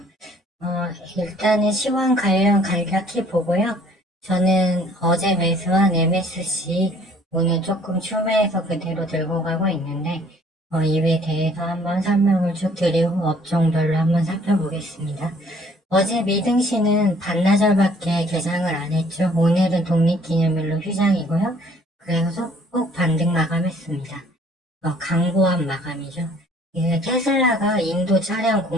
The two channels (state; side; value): normal; both; correlation 0.58